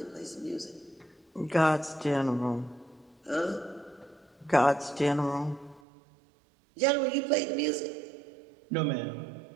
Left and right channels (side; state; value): left; drops out; at 5.8 s